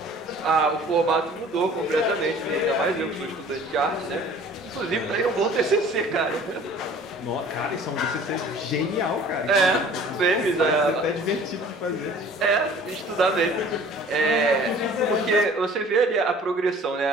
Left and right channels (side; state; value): both; normal; correlation 0.49